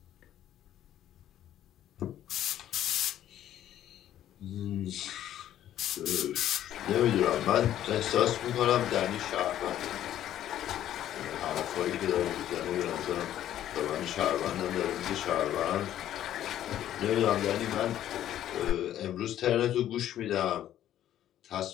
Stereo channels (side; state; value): right; quieter; 11.8 dB